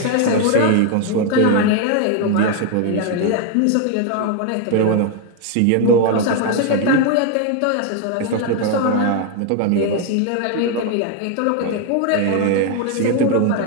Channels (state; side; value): different; both; correlation 0.01